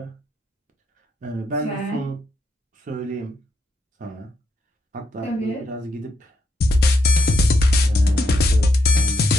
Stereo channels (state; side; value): normal; both; correlation 0.79